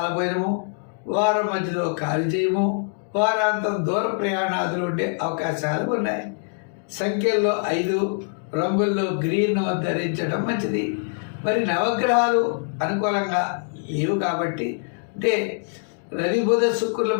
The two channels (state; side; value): silent; right; digital silence